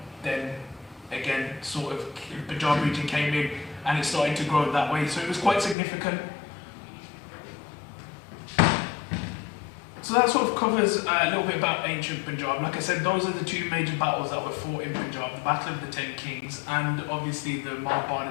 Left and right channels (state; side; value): drops out; right; at 5.8 s